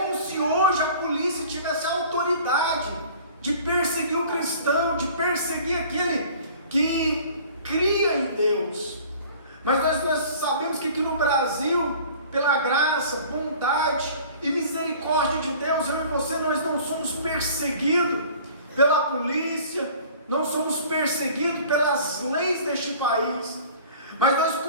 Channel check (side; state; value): both; inverted; correlation -0.47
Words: se hoje a polícia tivesse autorizado de perseguir o cristão, de perseguir aquele que cria em Deus. Mas nós sabemos que aqui no Brasil, pela graça, bondade e misericórdia de Deus, eu e você, nós não somos perseguidos pela polícia, não somos perseguidos pelas leis deste país, mas nós